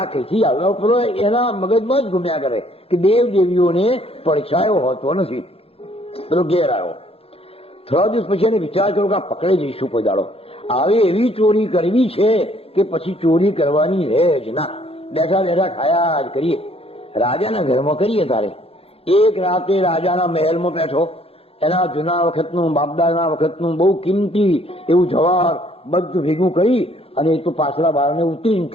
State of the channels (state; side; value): late; right; 0.28 ms